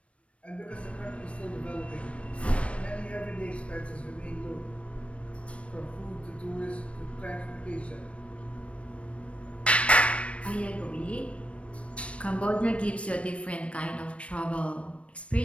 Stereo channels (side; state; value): right; late; 0.062 ms